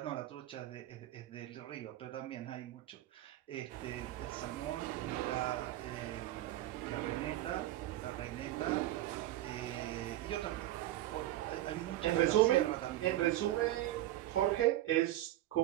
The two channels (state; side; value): quieter; left; 14.7 dB